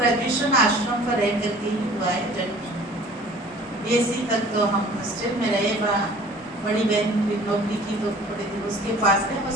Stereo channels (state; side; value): normal; both; correlation 0.48